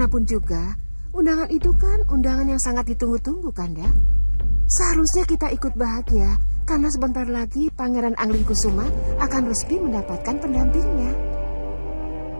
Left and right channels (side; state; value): both; inverted; correlation -1.00